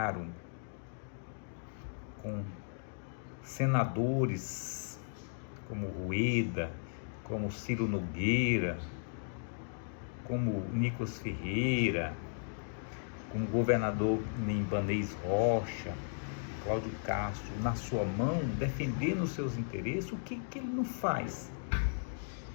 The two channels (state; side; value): silent; right; digital silence